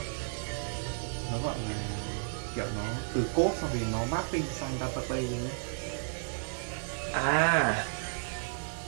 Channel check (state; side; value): silent; left; digital silence